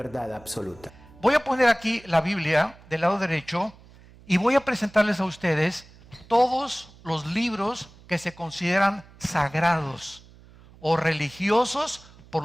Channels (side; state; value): right; noise; hum, 24 dB below the sound